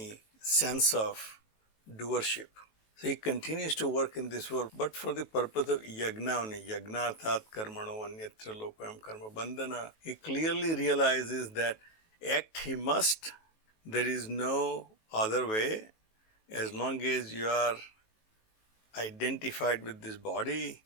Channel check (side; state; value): right; late; 18 ms